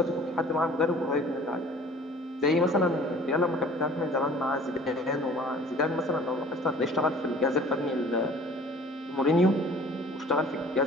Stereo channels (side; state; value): both; normal; correlation 0.49